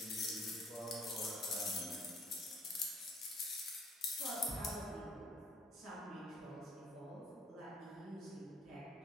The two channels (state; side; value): normal; both; correlation 0.60